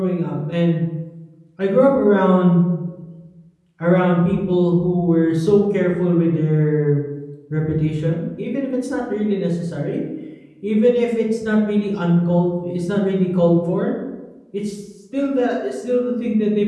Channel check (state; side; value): identical; both; correlation 1.00